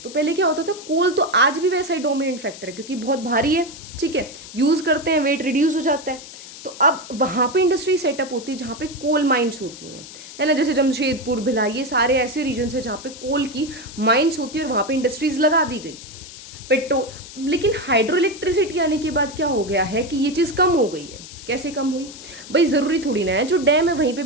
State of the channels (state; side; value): noise; left; hiss, 15 dB below the sound